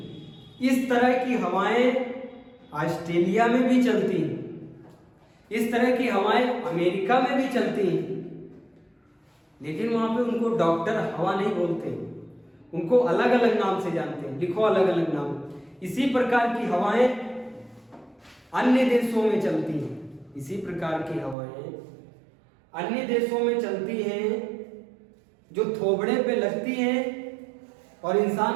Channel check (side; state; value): left; drops out; at 21.4 s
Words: इस तरह की हवाएं ऑस्ट्रेलिया में भी चलती हैं, इस तरह की हवाएं अमेरिका में भी चलती हैं। लेकिन वहां पे उनको डॉक्टर हवा नहीं बोलते, उनको अलग अलग नाम से जानते हैं। लिखो अलग अलग नाम। इसी प्रकार की हवाएं अन्य देशों में चलती हैं, इसी प्रकार की हवाएं अन्य देशों में चलती हैं, जो थोबड़े पे लगती हैं और